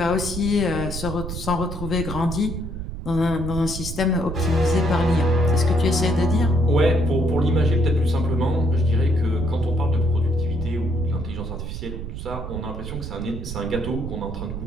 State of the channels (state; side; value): noise; right; rumble, 7 dB below the sound